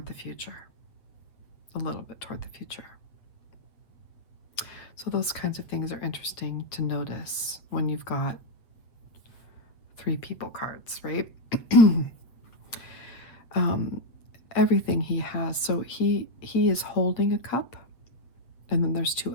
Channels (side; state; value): right; late; 8.2 ms